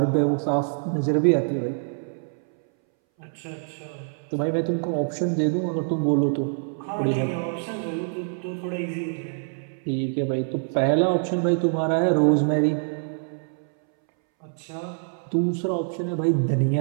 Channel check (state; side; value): silent; left; 61 dB below the other